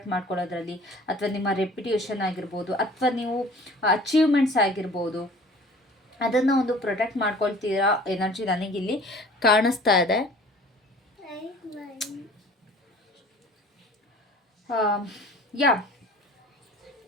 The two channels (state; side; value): normal; both; correlation 0.47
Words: ಮಾಡ್ಕೊಳ್ಳೋದ್ರಲ್ಲಿ, ಅಥವಾ ನಿಮ್ಮ ರೆಪ್ಯುಟೇಷನ್ ಆಗಿರ್ಬೋದು, ಅಥವಾ ನೀವು ಅಚೀವ್ಮೆಂಟ್ಸ್ ಆಗಿರ್ಬೋದು, ಅದನ್ನು ಒಂದು ಪ್ರೊಟೆಕ್ಟ್ ಮಾಡ್ಕೊಳ್ತೀರಾ ಎನರ್ಜಿ ನನಗಿಲ್ಲಿ ಕಾಣಿಸ್ತಾ ಇದೆ. ಯಾ,